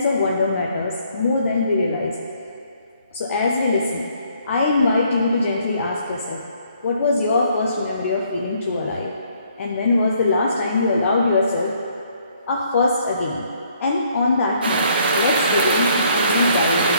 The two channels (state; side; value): inverted; both; correlation -0.66